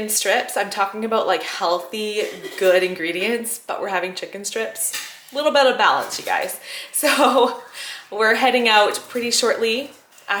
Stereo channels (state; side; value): identical; both; correlation 1.00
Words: strips. I'm talking about like healthy, good ingredients, but we're having chicken strips. A little bit of balance, you guys. So we're heading out pretty shortly